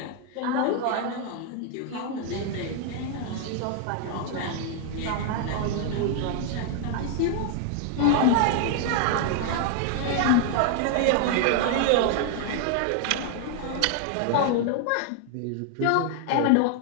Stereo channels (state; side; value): different; both; correlation 0.00